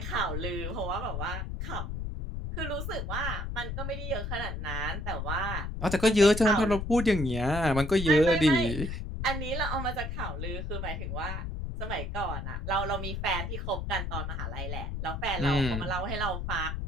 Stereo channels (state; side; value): noise; left; rumble, 4 dB below the sound